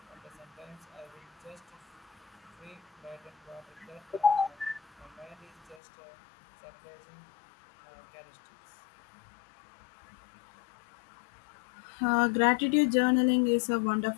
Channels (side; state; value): right; drops out; at 5.8 s